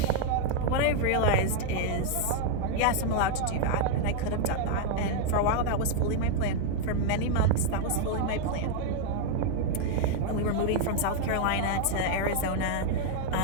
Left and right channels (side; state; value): both; different; correlation 0.00